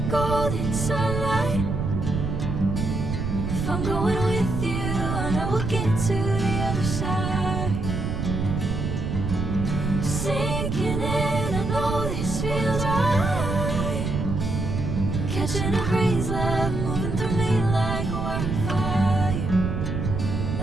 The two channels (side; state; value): right; noise; rumble, 2 dB below the sound